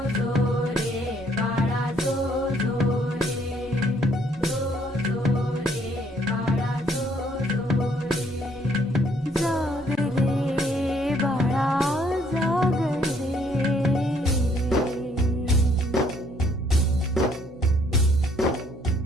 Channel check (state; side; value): normal; both; correlation 0.66